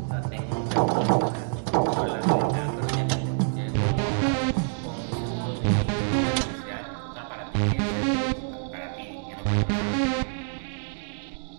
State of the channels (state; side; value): silent; left; 60 dB below the other